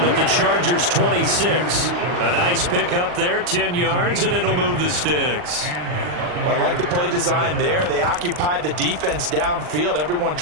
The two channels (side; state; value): left; late; 40 ms